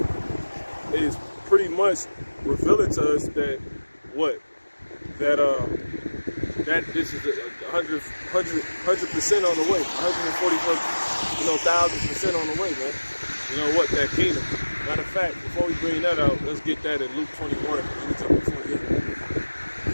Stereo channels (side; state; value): both; inverted; correlation -1.00